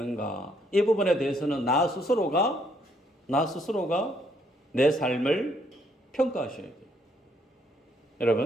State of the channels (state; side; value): normal; both; correlation 0.70